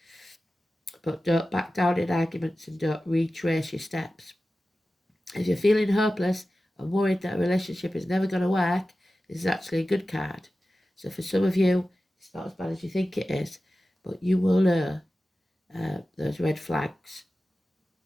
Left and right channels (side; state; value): both; normal; correlation 0.95